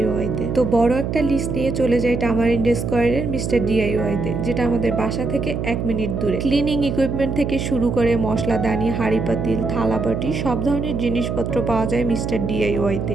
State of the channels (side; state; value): right; noise; hum, 3 dB below the sound